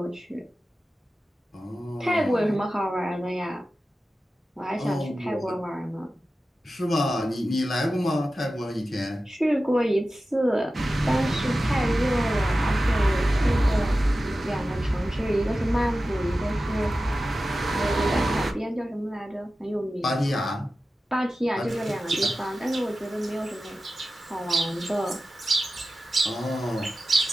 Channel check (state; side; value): normal; both; correlation 0.94